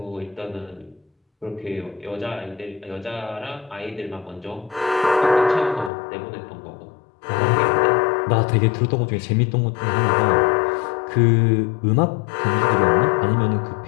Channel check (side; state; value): right; drops out; at 5.9 s